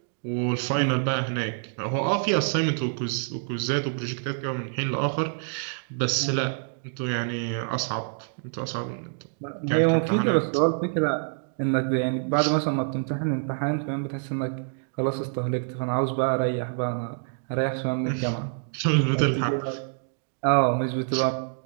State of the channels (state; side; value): silent; left; digital silence